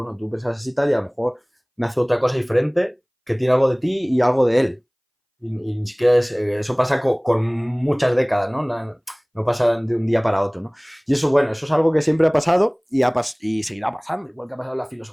tú piensas así tal y a lo mejor nace otra cosa diferente que tiene algo de ti y algo de él. Y ni siquiera eso pasa con muchas décadas, ¿no? No pasa de un día para otro, ¿no? Y eso, bueno, eso es algo que siempre ha pasado y seguirá pasando, igual que ha pasado en la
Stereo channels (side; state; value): both; identical; correlation 1.00